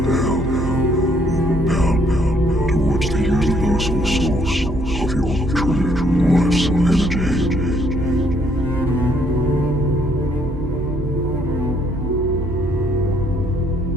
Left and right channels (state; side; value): normal; both; correlation 0.67